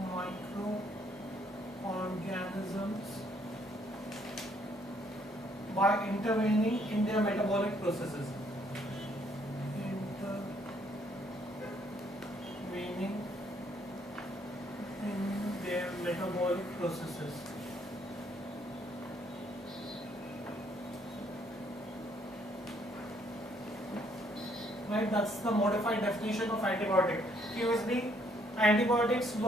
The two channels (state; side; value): normal; both; correlation 0.68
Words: by intervening in their metabolic processes. Right, that's the modified definition of antibiotic. Previously, antibiotics